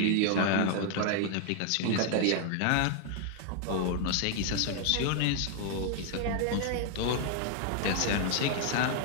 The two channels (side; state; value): both; different; correlation 0.00